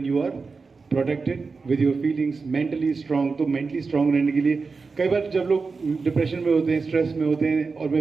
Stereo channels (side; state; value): left; quieter; 4.5 dB